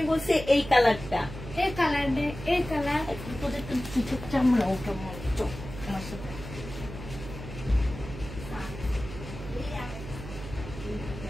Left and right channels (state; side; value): noise; right; hum, 11 dB below the sound